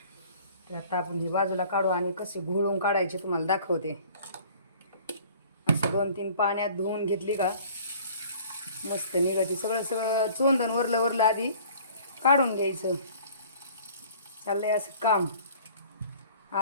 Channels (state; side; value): inverted; both; correlation -0.51